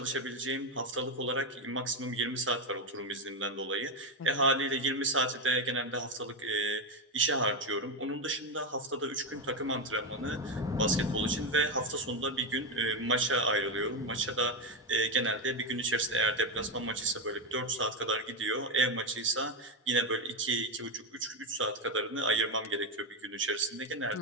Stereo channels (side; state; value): both; normal; correlation 0.09